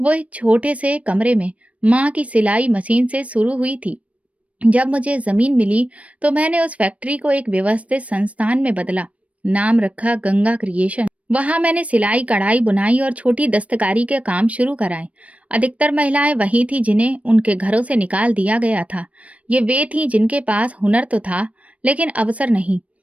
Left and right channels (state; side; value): late; left; 0.065 ms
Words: एक छोटे से कमरे में माँ की सिलाई मशीन से शुरू हुई थी। जब मुझे जमीन मिली तो मैंने उस फैक्ट्री को एक व्यवस्थित संस्थान में बदला। नाम रखा गंगा क्रिएशन। वहां मैंने सिलाई, कढ़ाई, बुनाई और छोटी दस्तकारी के काम शुरू कराए। अधिकतर महिलाएं वही थी जिन्हें उनके घरों से निकाल दिया गया था। ये वे थीं जिनके पास हुनर तो था, लेकिन अवसर नहीं।